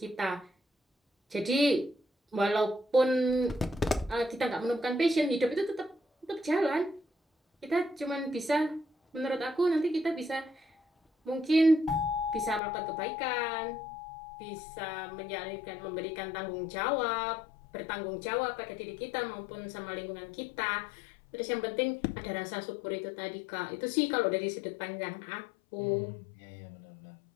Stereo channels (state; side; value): drops out; right; at 12.6 s